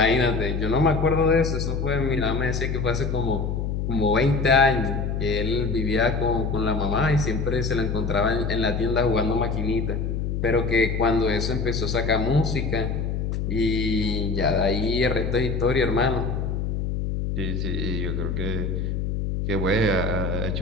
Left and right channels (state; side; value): noise; left; hum, 1 dB below the sound